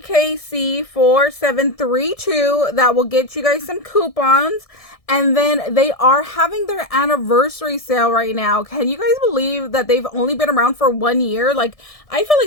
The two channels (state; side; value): late; right; 1.6 ms